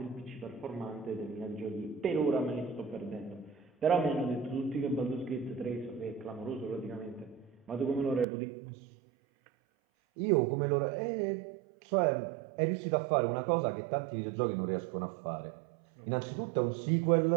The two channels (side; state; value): left; drops out; at 8.2 s